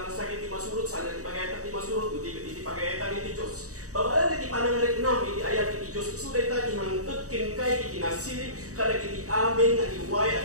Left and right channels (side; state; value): left; late; 0.66 ms